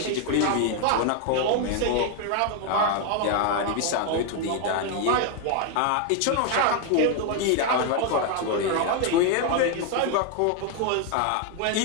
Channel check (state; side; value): different; both; correlation 0.01